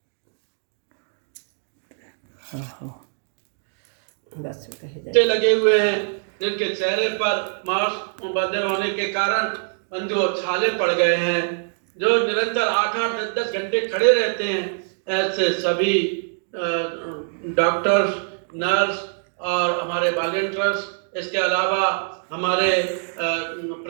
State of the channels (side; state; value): left; silent; digital silence